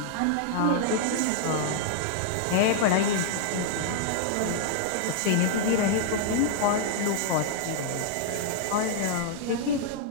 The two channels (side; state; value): both; different; correlation -0.01